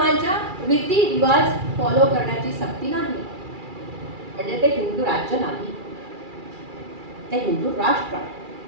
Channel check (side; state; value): left; late; 2.3 ms